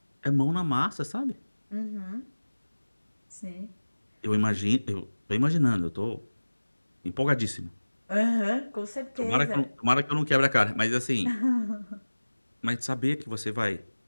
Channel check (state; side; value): inverted; both; correlation -1.00